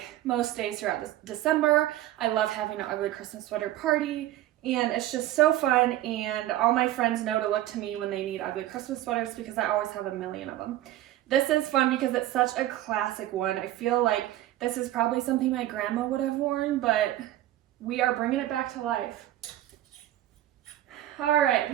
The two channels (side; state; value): left; quieter; 14.2 dB